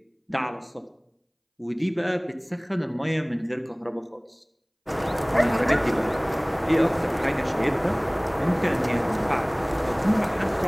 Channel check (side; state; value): both; identical; correlation 1.00